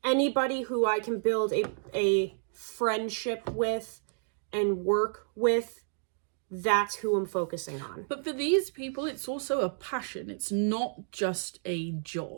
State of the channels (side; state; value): left; silent; digital silence